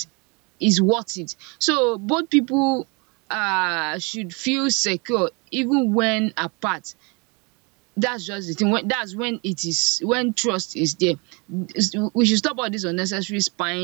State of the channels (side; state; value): left; quieter; 30.3 dB